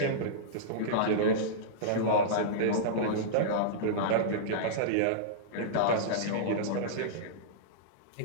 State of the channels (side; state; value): both; different; correlation -0.04